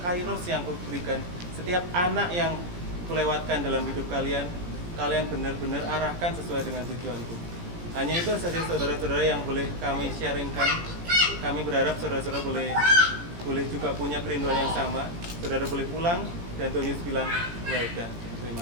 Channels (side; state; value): left; late; 17 ms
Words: kairos yang kuberikan, setiap anak yang kulewatkan dalam hidup kalian, kalian benar-benar arahkan sesuai dengan tujuanku. Hanya itu saja saudara-saudara yang boleh kami sharingkan. Kami berharap saudara-saudara boleh juga punya kerinduan yang sama. Saudara boleh pulang dan Tuhan Yesus bilang, well done. Terima